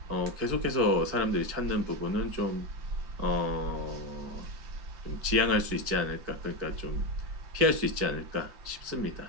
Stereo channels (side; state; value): left; late; 4.6 ms